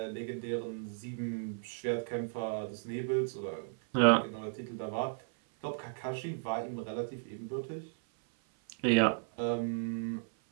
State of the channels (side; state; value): left; silent; 55 dB below the other